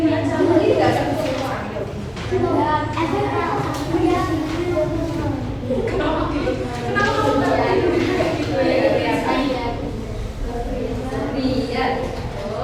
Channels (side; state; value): both; identical; correlation 1.00